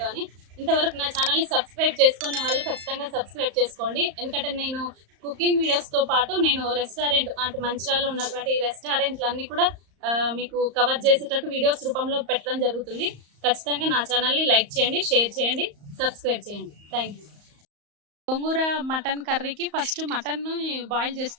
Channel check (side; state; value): left; late; 35 ms